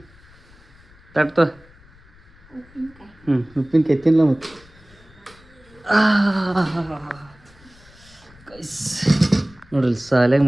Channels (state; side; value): noise; left; rumble, 26 dB below the sound